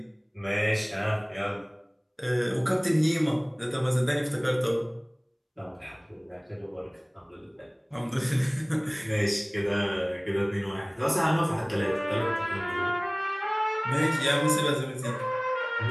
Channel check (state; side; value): identical; both; correlation 1.00